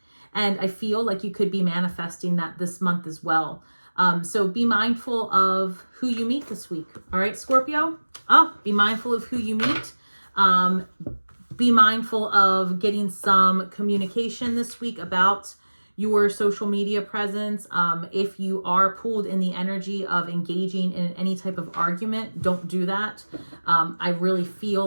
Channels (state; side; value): inverted; both; correlation -1.00